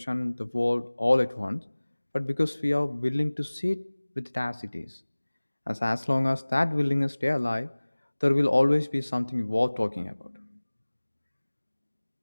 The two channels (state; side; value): inverted; both; correlation -1.00